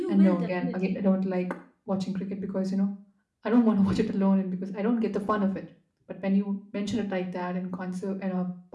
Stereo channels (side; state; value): both; identical; correlation 1.00